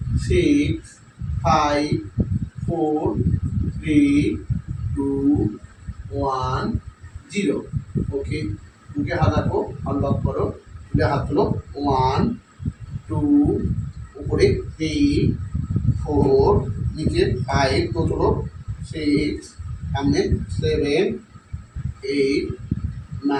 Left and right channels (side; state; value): both; identical; correlation 1.00